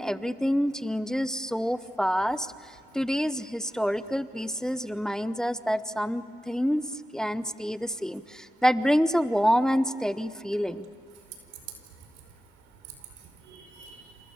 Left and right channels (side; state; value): both; normal; correlation 0.94